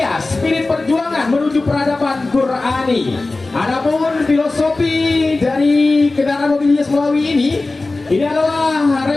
spirit perjuangan menuju peradaban Qurani. Adapun filosofi dari kendaraan mobil hias Melawi ini adalah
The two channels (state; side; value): quieter; right; 3.3 dB